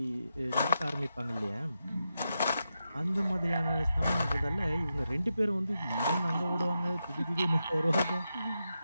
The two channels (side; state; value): both; inverted; correlation -0.88